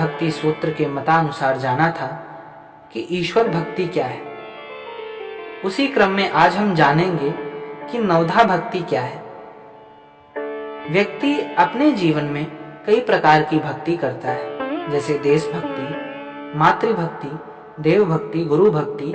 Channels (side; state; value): both; identical; correlation 1.00